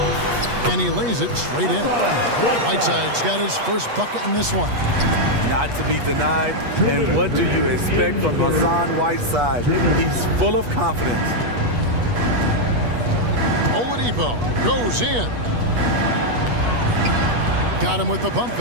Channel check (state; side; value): late; left; 8.3 ms